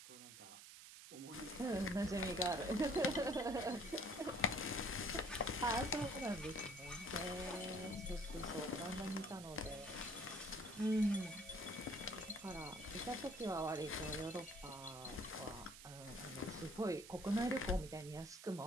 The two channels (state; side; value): noise; right; hiss, 14 dB below the sound